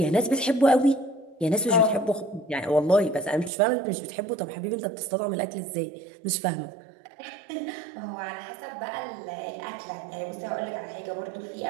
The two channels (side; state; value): left; drops out; at 3.5 s